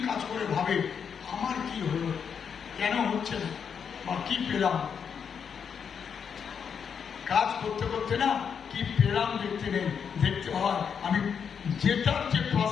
কাজ করে ভাবে আমার কি হলো, কেন হচ্ছে না, বা কি পেলাম। কাজ করতে করতে না কি পেলাম দেখতে নেই, দেখতে হয় আমি যেটার যে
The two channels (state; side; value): quieter; right; 7.0 dB